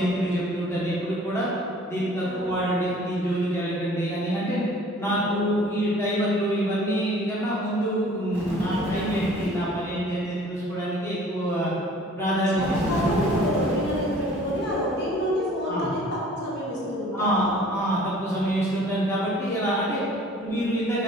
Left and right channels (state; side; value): normal; both; correlation 0.51